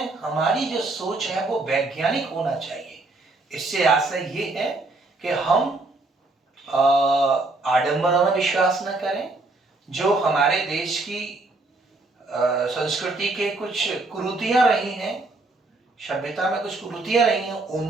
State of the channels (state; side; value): quieter; left; 3.1 dB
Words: हमारी जो सोच है वो वैज्ञानिक होना चाहिए। इससे आशय ये है कि हम आडंबरों में विश्वास न करें। जो हमारे देश की संस्कृति के कुछ कुरीतियां रही हैं, सभ्यता में कुछ कुरीतियां रही हैं,